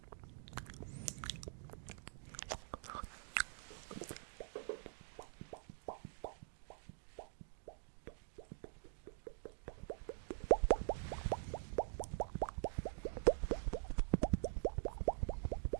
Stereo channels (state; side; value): silent; left; digital silence